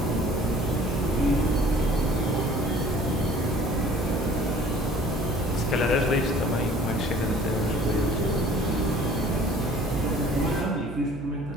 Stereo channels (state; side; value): noise; right; hum, 11 dB below the sound